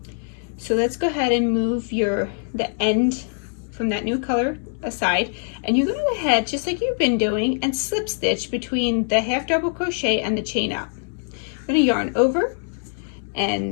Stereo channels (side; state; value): right; silent; digital silence